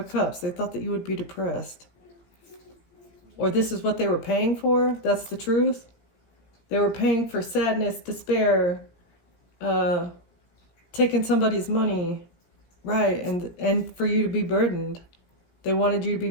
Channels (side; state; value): right; late; 17 ms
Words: Cups. They thought that you would be depressed. Or this is what they were paying for. That's the truth. They were paying for sadness, despair, taking somebody's money. Right, and for you to be burdened. They wanted you to be